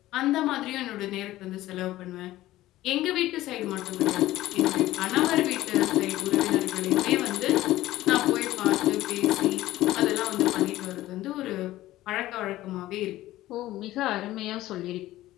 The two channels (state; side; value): quieter; right; 15.7 dB